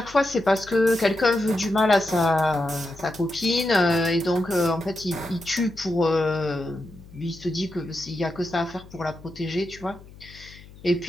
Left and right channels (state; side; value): noise; left; hum, 20 dB below the sound